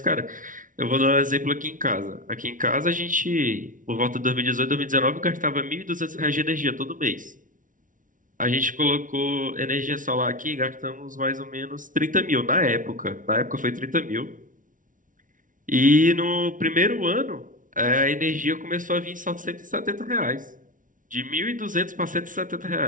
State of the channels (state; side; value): late; left; 0.38 ms